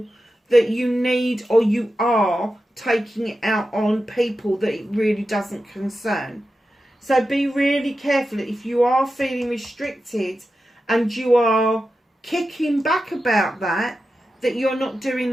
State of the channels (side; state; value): both; normal; correlation 0.91